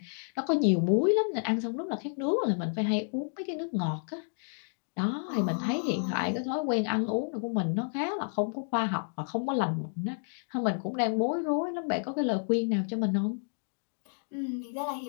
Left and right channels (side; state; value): right; silent; digital silence